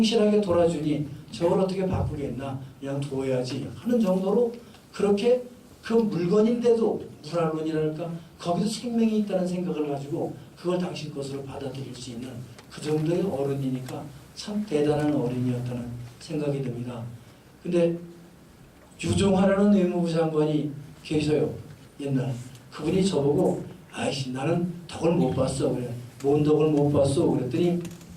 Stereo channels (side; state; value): both; identical; correlation 1.00